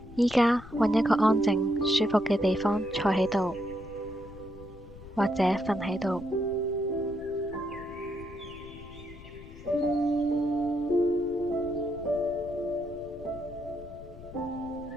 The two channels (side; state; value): left; noise; rumble, 17 dB below the sound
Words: 依家揾一個安靜、舒服嘅地方坐喺度，或者瞓喺度。